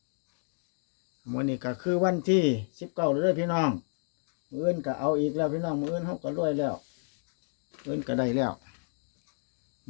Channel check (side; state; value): right; silent; digital silence